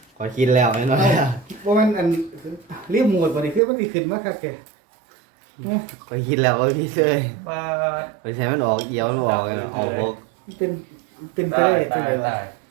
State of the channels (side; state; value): left; drops out; at 3.6 s